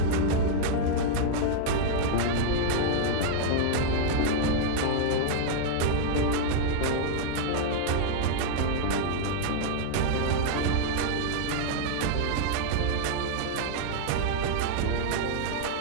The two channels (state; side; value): different; both; correlation -0.01